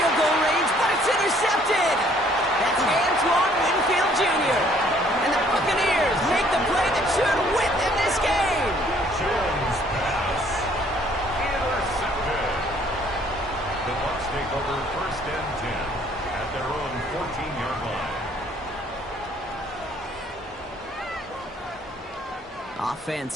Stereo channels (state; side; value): normal; both; correlation 0.61